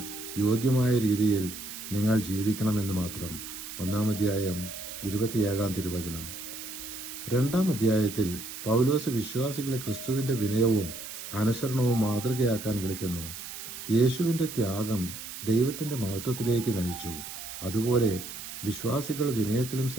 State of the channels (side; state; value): right; noise; hiss, 10 dB below the sound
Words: യോഗ്യമായ രീതിയിൽ നിങ്ങൾ ജീവിക്കണമെന്ന് മാത്രം. 1-ാം അധ്യായം 27-ാം തിരുവചനം. 2-ാം അധ്യായത്തിൽ പൗലോസ് വിശ്വാസികളെ ക്രിസ്തുവിന്റെ വിനയവും അനുസരണവും മാതൃകയാക്കാൻ വിളിക്കുന്നു. യേശുവിന്റെ ത്യാഗം ദൈവത്തിന്റെ മഹത്വത്തിലേക്ക് നയിച്ചു. അതുപോലെ വിശ്വാസികൾ വിനയത്തിലും